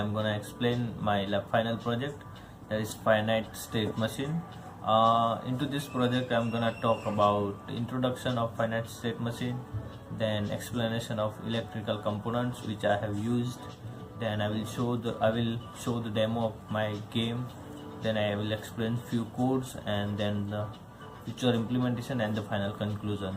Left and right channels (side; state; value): both; identical; correlation 1.00